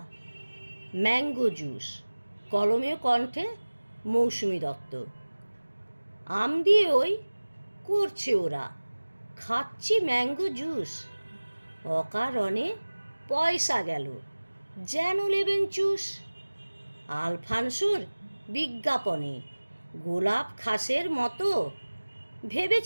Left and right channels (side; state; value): both; inverted; correlation -1.00